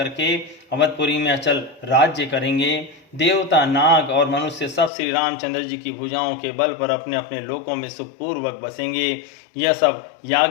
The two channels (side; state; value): right; drops out; at 4.9 s